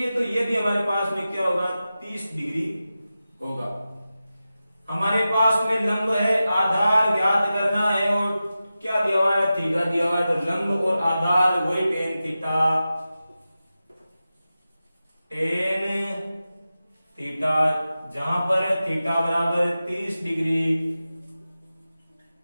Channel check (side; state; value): both; inverted; correlation -0.94